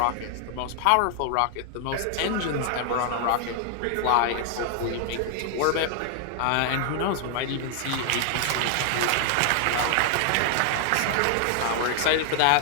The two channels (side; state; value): both; different; correlation 0.00